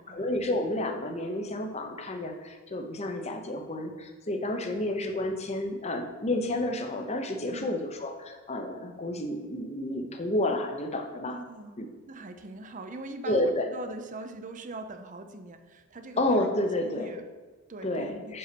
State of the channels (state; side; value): normal; both; correlation 0.32